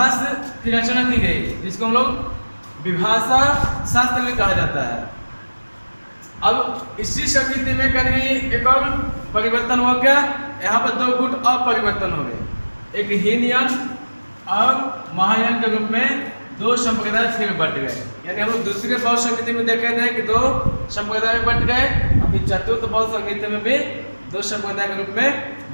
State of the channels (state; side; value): inverted; both; correlation -1.00